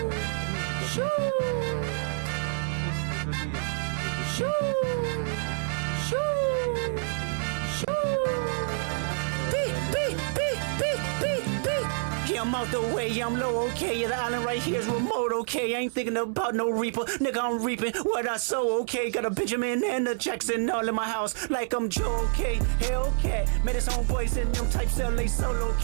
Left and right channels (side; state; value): left; silent; 60 dB below the other